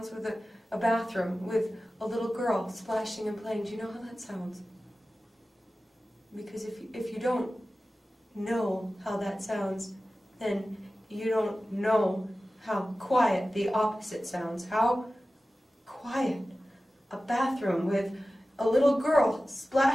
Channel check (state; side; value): normal; both; correlation 0.96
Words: with a bathroom with a little girl splashing and playing. Do you know how that sounds? Because if you don't know how that sounds, then you don't know how quiet the opposite sounds. How quiet a bathroom with a little girl